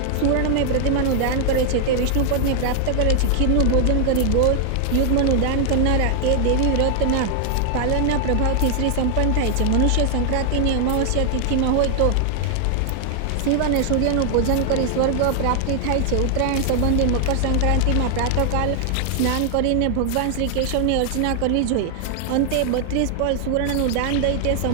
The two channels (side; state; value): both; different; correlation 0.00